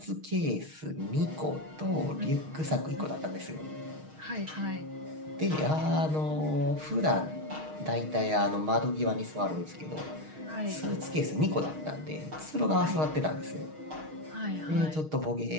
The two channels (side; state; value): left; late; 6.4 ms